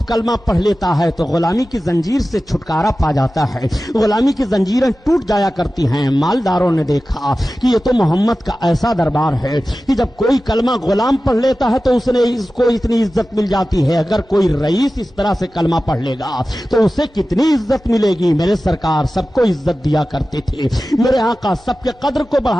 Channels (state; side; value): normal; both; correlation 0.95